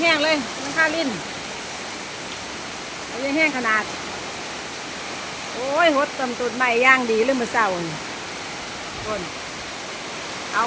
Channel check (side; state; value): both; identical; correlation 1.00